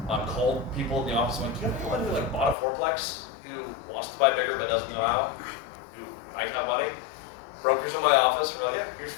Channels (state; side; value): drops out; right; at 2.6 s